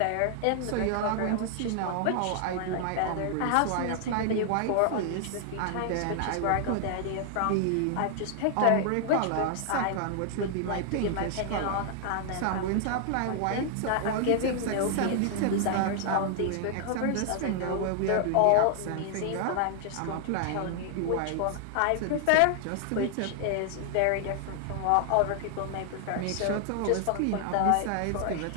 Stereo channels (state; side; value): different; both; correlation 0.00